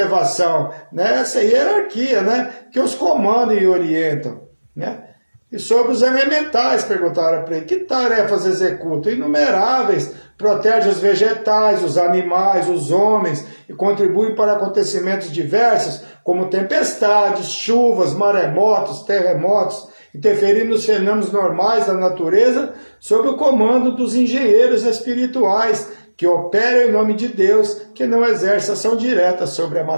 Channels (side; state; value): both; inverted; correlation -1.00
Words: né? Essa hierarquia, né? Que os comandam e orientam, né? E sobre os elementais, perguntaram para ele, que tarefas executam? Inumeráveis, protegem os vegetais, os animais, os homens, e contribuem para acontecimentos diversos, como tempestades, chuvas, maremotos, terremotos, interferindo nos fenômenos normais da natureza, sob o comando dos engenheiros espirituais, que operam em nome de Deus, que não exercem ação direta sobre a